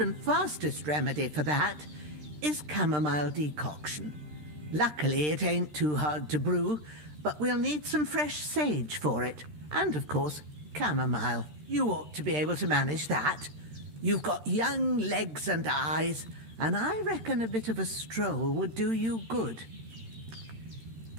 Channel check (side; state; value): left; late; 13 ms